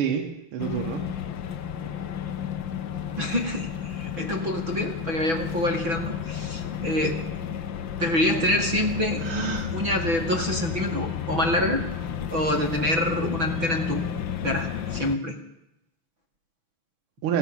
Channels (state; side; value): late; left; 6.1 ms